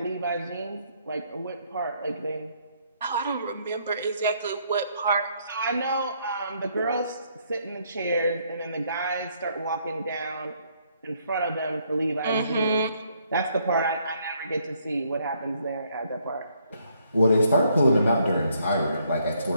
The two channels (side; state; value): both; inverted; correlation -0.70